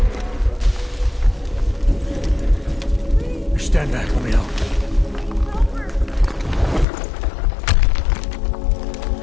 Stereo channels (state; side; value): drops out; right; at 6.9 s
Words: Stand back, let me help.